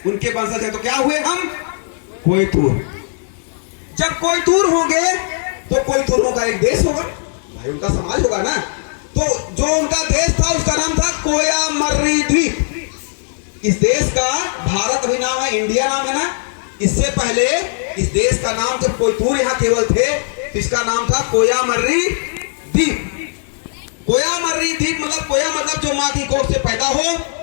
उनके वंशज हैं। तो क्या हुए हम? कोयतूर। जब कोयतूर होंगे तो कोयतूरों का एक देश होगा भाई, उनका समाज होगा ना। तो जो उनका देश था उसका नाम था कोयामर्री द्वीप। इस देश का भारत भी नाम है, इंडिया नाम है ना। इससे पहले इस देश का नाम, जब कोयतूर यहाँ केवल थे तो इसका नाम था कोयामर्री द्वीप। कोयामर्री द्वीप मतलब, कोया मतलब जो माँ की कोख से पैदा हो,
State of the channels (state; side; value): silent; right; 67 dB below the other